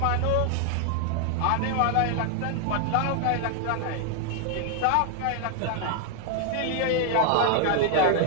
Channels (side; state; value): both; different; correlation 0.00